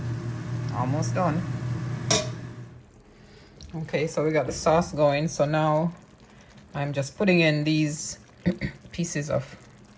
Almost done. Okay, so we got the sauce going. So now I'm just putting in these pieces of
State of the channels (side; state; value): both; identical; correlation 1.00